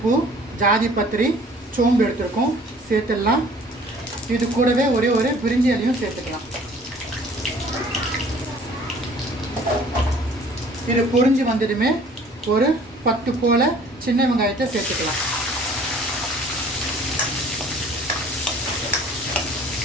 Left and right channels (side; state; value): both; normal; correlation 0.52